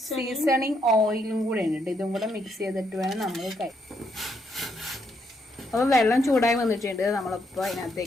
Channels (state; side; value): normal; both; correlation 0.76